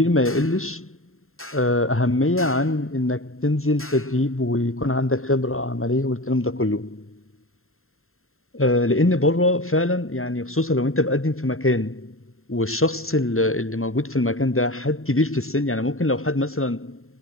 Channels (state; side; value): late; right; 0.61 ms